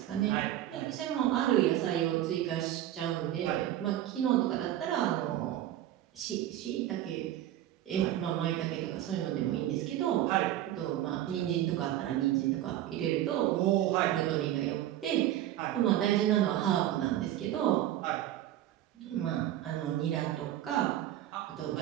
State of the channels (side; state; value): left; quieter; 12.9 dB